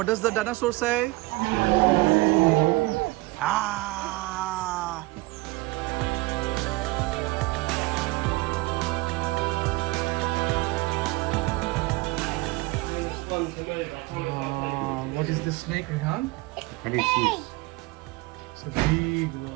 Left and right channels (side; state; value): left; quieter; 22.2 dB